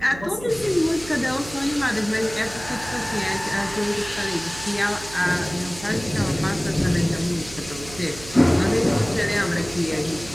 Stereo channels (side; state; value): right; noise; hum, 16 dB below the sound